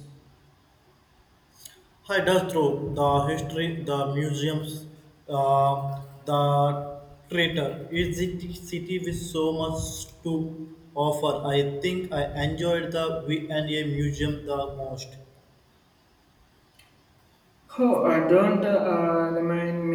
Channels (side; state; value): both; identical; correlation 1.00